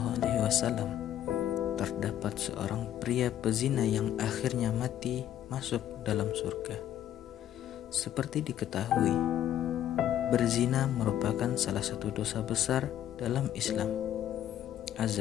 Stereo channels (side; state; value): right; quieter; 11.3 dB